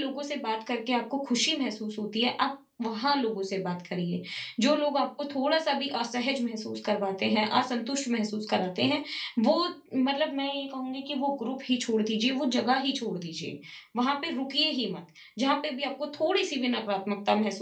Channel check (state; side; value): identical; both; correlation 1.00